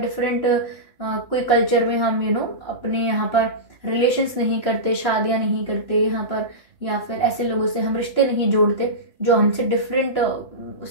कोई कल्चर में हम अपने यहाँ पर रिलेशंस नहीं करते, शादियां नहीं करते यहाँ पर, या फिर ऐसे लोगों से हम रिश्ते नहीं जोड़ते जो हमसे डिफरेंट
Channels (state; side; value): late; right; 2.9 ms